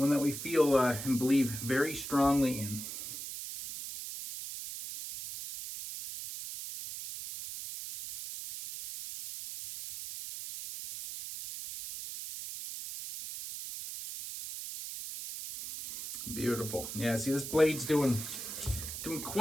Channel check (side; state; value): right; noise; hiss, 8 dB below the sound